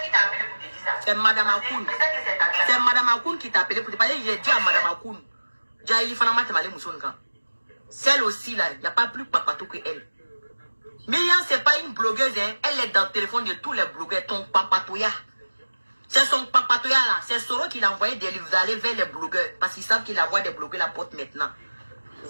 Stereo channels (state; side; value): inverted; both; correlation -1.00